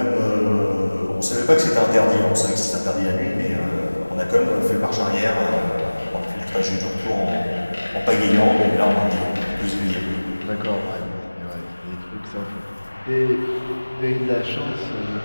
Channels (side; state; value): both; inverted; correlation -1.00